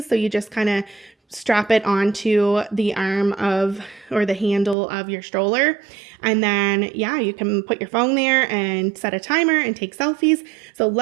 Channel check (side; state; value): left; drops out; at 4.8 s